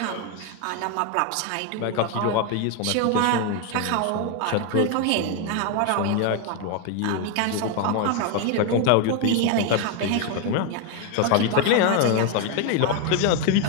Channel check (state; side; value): different; both; correlation 0.01